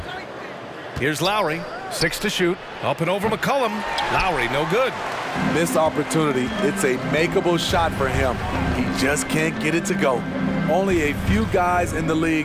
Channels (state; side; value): identical; both; correlation 1.00